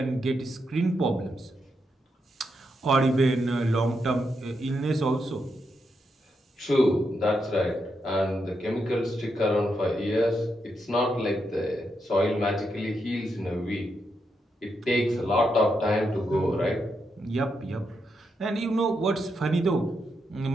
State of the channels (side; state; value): both; normal; correlation 0.82